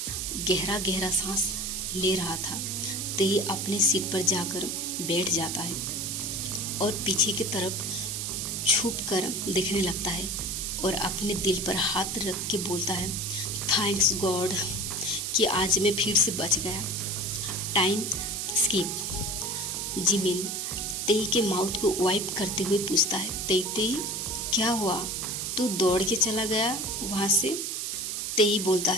गहरा गहरा सांस ले रहा था। तेई अपने सीट पर जाकर बैठ जाता है और पीछे की तरफ छुप कर देखने लगता है और अपने दिल पर हाथ रख के बोलता है, थैंक्स गॉड कि आज मैं फिर से बच गया। Time skip. जिमिन तेई के माउथ को वाइप करते हुए पूछता है, तेई क्या हुआ? तू दौड़ के चला गया वहाँ से? तेई बोलता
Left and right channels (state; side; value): noise; right; hiss, 2 dB below the sound